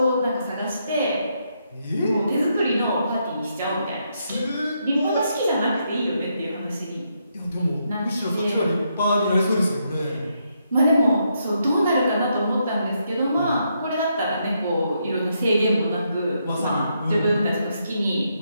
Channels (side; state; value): both; inverted; correlation -0.78